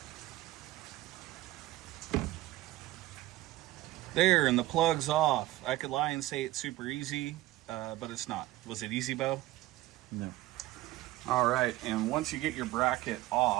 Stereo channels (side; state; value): left; quieter; 17.1 dB